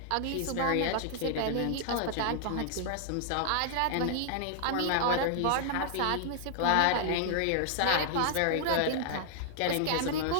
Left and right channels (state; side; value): different; both; correlation -0.01